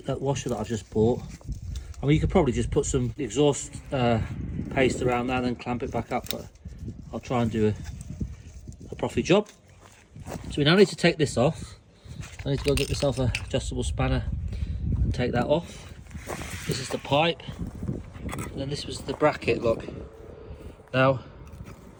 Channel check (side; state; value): both; identical; correlation 1.00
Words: I've just bought. I mean, you could probably just put some exhaust paste around that and then clamp it back up. But I'll try and do a proper job. So we now need to take this off. I need to go get myself an adjustable spanner and take that off. This is the pipe, and then this was the bracket. Look, now